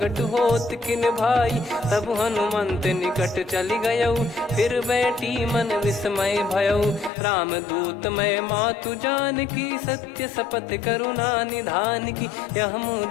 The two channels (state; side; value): drops out; right; at 7.1 s